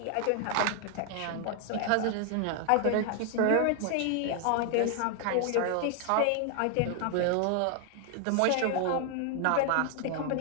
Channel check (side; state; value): both; different; correlation 0.00